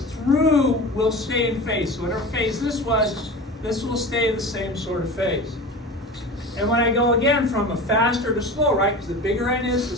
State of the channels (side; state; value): both; normal; correlation 0.32